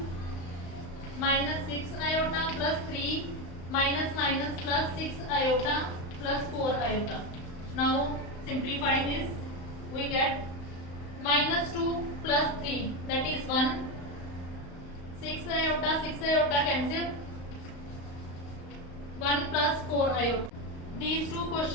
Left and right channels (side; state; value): right; late; 35 ms